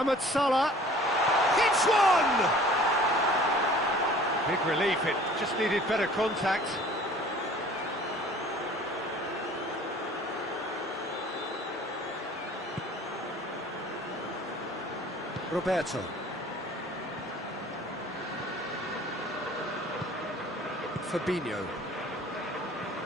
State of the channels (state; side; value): normal; both; correlation 0.49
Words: Salah hits one! Big relief, it just needed better contact. Roberto. Fabinho.